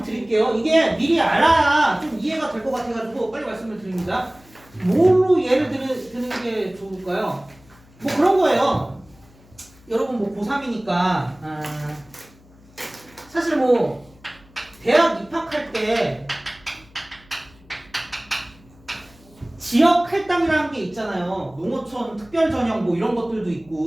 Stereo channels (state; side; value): noise; left; hum, 27 dB below the sound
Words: 드릴게요. 이게 미리 알아야 좀 이해가 될 것 같아가지고 빨리 말씀을 드립니다. 뭘로 예를 드는 게 좋을까요? 뭐 그런 거예요. 여러분 뭐 고3이니까 사실 뭐 대학 입학할 때 지역 할당이라는 게 있잖아요. 농어촌 특별 전형 뭐 이런 것들도